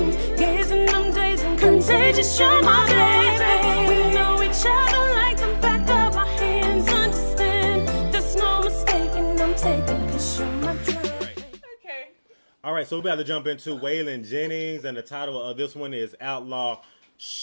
gazing them days and contagious. You're my baby. We know each other like the back of our hands. Understand, there's no mistaking. I'm taking 'cause you're my dream. Okay. All right, so we're about to jump into Waylon Jennings, and the title of this one is Outlaw.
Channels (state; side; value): inverted; both; correlation -1.00